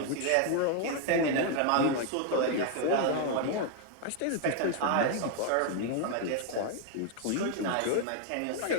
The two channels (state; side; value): different; both; correlation 0.00